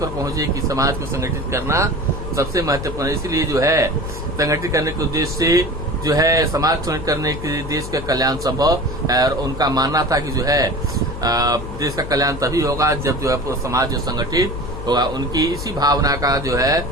पहुंचे कि समाज को संगठित करना सबसे महत्वपूर्ण, इसलिए जो है संगठित करने के उद्देश्य से जो है समाज संगठित करने के लिए देश का कल्याण संभव है। और उनका मानना था कि जो है देश का कल्याण तभी होगा जब जो है पूरा समाज जो संगठित होगा। उनकी इसी भावना का जो है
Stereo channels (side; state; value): left; noise; hum, 9 dB below the sound